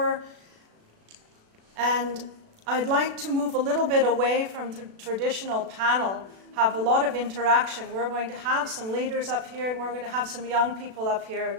and I'd like to move a little bit away from the traditional panel, have a lot of interaction. We're going to have some leaders up here, and we're going to have some young people up here,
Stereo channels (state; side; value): late; left; 36 ms